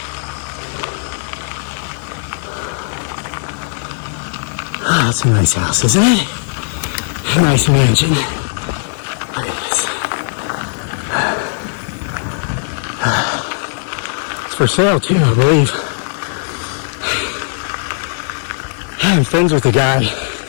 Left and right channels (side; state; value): right; silent; 59 dB below the other